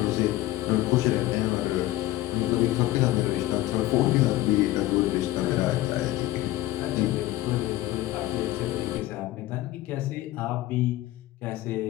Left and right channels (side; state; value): right; quieter; 16.1 dB